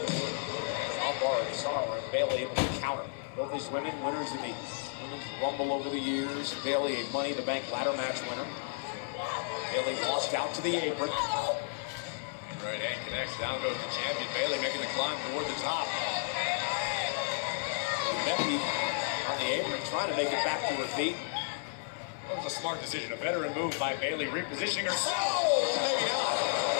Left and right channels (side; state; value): right; silent; 56 dB below the other